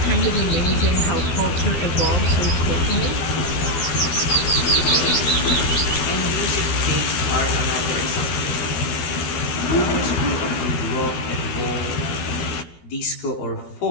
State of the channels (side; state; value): right; late; 12 ms